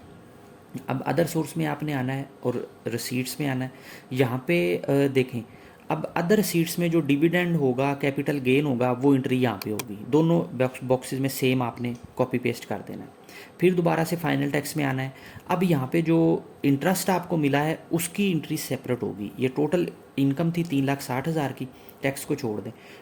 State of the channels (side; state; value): both; identical; correlation 1.00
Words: अब अदर सोर्स में आपने आना है और रिसीट्स में आना है। यहाँ पे देखें, अब अदर सीट्स में जो डिविडेंड होगा, कैपिटल गेन होगा, वो एंट्री यहाँ पे होगी। दोनों बॉक्सेस में सेम आपने कॉपी पेस्ट कर देना है। फिर दोबारा से फाइनल टैक्स में आना है। अब यहाँ पे जो इंटरेस्ट आपको मिला है उसकी एंट्री सेपरेट होगी। ये टोटल इनकम थी 3,60,000 की, टैक्स को छोड़ दें,